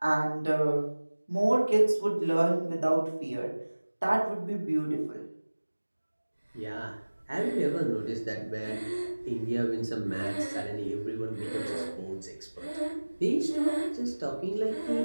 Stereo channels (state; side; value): inverted; both; correlation -1.00